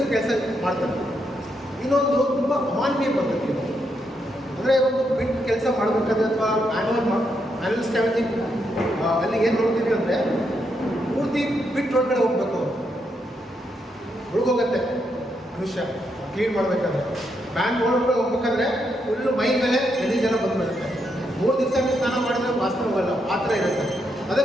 ಕೆಲಸ ಮಾಡ್ತಾರೆ. ಇನ್ನೊಂದು ತುಂಬ ಅಮಾನವೀಯ ಪದ್ಧತಿ. ಅಂದರೆ ಒಂದು ಬಿಟ್ ಕೆಲಸ ಮಾಡಬೇಕಾದ್ರೆ ಅಥವಾ ಮ್ಯಾನ್ಯುವಲ್ ಸ್ಕ್ಯಾವೆಂಜಿಂಗ್ ಅಲ್ಲಿ ಏನು ನೋಡ್ತೀವಿ ಅಂದರೆ ಪೂರ್ತಿ ಬಿಟ್ ಒಳಗಡೆ ಹೋಗ್ಬೇಕು, ಹುಡುಗೋಗತ್ತೆ ಮನುಷ್ಯ ಕ್ಲೀನ್ ಮಾಡಬೇಕಾದ್ರೆ. ಬ್ಯಾಂಕ್ ಒಳಗಡೆ ಹೋಗ್ಬೇಕಾದ್ರೆ ಫುಲ್ಲು ಮೈ ಮೇಲೆ ಜನ ಬಂದುಬಿಡುತ್ತೆ. 3 ದಿವಸ ಸ್ನಾನ ಮಾಡಿದ್ರೆ ವಾಸನೆ ಹೋಗಲ್ಲ, ಆ ಥರ ಇರುತ್ತೆ.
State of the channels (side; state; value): both; normal; correlation 0.80